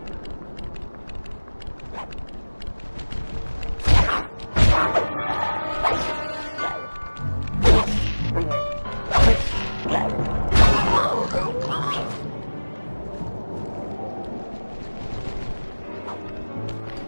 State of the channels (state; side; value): inverted; both; correlation -1.00